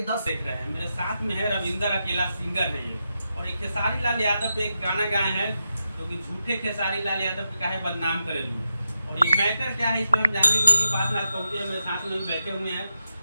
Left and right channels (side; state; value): both; inverted; correlation -0.87